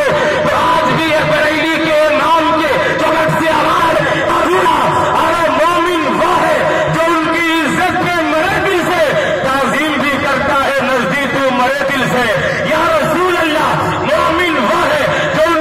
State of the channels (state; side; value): identical; both; correlation 1.00